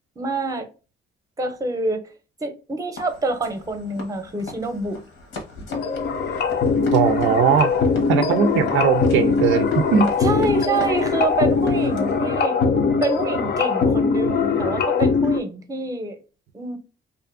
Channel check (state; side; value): normal; both; correlation 0.34